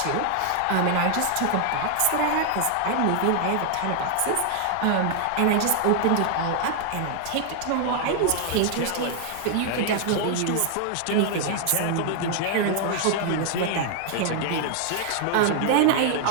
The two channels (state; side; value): different; both; correlation 0.00